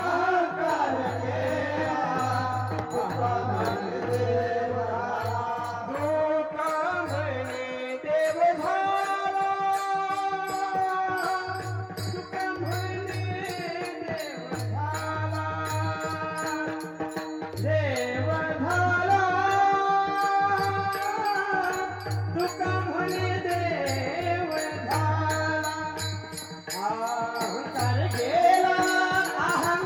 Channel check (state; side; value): identical; both; correlation 1.00